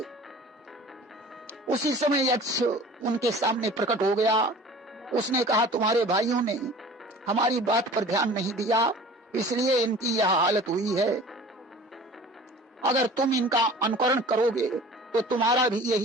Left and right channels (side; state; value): both; normal; correlation 0.44